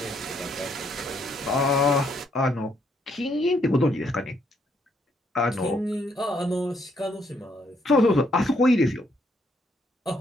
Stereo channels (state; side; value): normal; both; correlation 0.71